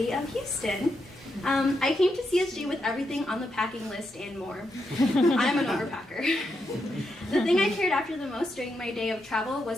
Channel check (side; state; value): both; normal; correlation 0.83